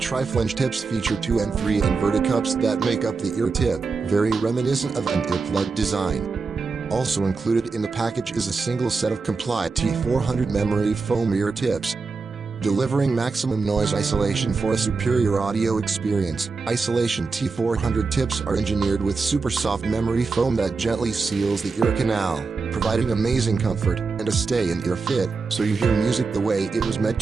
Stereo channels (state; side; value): quieter; left; 4.4 dB